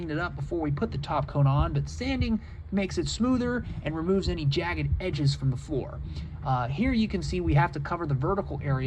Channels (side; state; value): both; identical; correlation 1.00